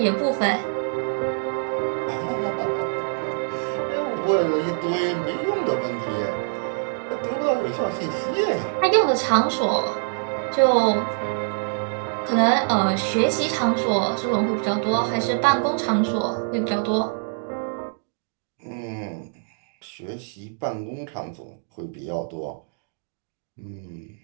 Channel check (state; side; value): silent; left; digital silence